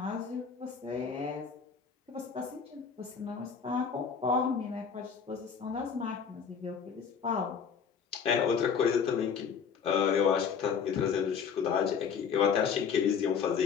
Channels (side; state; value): right; quieter; 6.6 dB